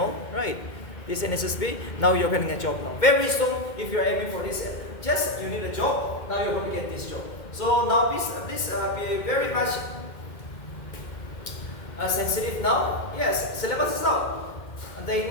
right? This NSSP, now you're getting a job now. Very soon, if you're aiming for this, just you need a job. Now you're going to get this job. So now please be very much sensitive now. Yes, syllabus is out. The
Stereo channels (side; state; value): right; late; 2.1 ms